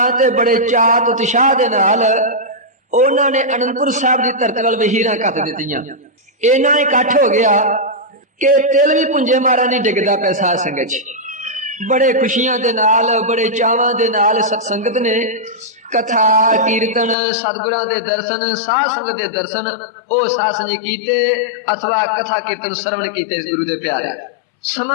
ਤੇ ਬੜੇ ਚਾਅ ਤੇ ਉਤਸ਼ਾਹ ਦੇ ਨਾਲ ਉਹਨਾਂ ਨੇ ਅਨੰਦਪੁਰ ਸਾਹਿਬ ਦੀ ਧਰਤੀ ਵੱਲ ਵਹੀਰਾਂ ਕੱਤ ਦਿੱਤੀਆਂ। ਇੰਨਾ ਇਕੱਠ ਹੋ ਗਿਆ ਕਿ ਤਿਲ ਵੀ ਪੁੰਜੇ ਮਾਰਾ ਨਹੀਂ ਡਿੱਗਦਾ ਪਿਆ ਸਾਧ ਸੰਗਤ 'ਚ। ਬੜੇ ਖੁਸ਼ੀਆਂ ਦੇ ਨਾਲ ਬੜੇ ਚਾਵਾਂ ਦੇ ਨਾਲ ਸਤ ਸੰਗਤ ਨੇ ਕਥਾ ਕੀਰਤਨ ਸਤਿਗੁਰਾਂ ਦੇ ਦਰਸ਼ਨ ਸਾਧ ਸੰਗਤ ਦੇ ਦਰਸ਼ਨ ਉਹ ਸਾਧ ਸੰਗਤ ਕੀਤੇ ਅਥਵਾ ਕਥਾ ਕੀਰਤਨ ਸਰਵਣ ਕੀਤੇ ਗੁਰੂ ਦੇ ਪਿਆਰੇ।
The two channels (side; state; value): right; drops out; at 17.2 s